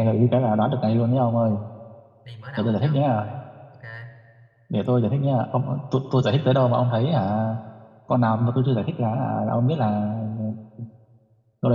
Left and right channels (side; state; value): both; identical; correlation 1.00